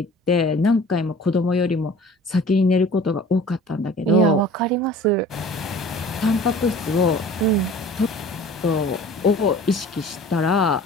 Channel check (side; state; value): both; normal; correlation 0.45